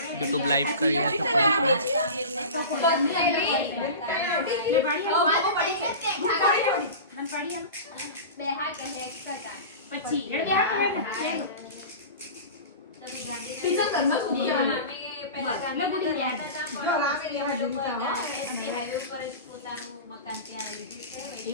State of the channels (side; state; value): both; inverted; correlation -0.32